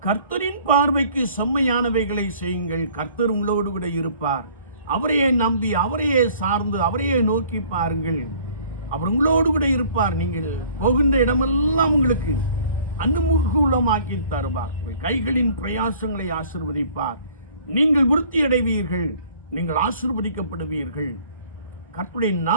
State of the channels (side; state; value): both; inverted; correlation -0.54